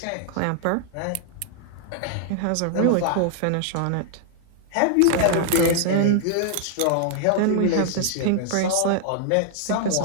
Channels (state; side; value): different; both; correlation -0.01